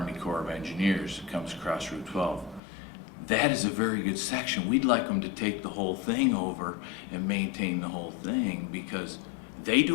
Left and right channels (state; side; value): drops out; right; at 2.6 s